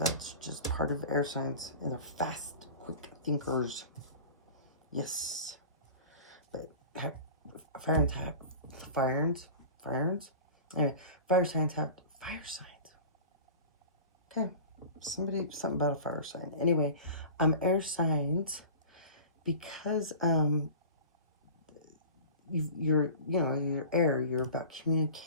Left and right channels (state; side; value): inverted; both; correlation -0.38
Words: just part of air signs, and they're fast, quick thinkers. Yes. But fire signs have fire signs. Okay. Something about a fire sign. Anyway, air signs, because you're air, you're about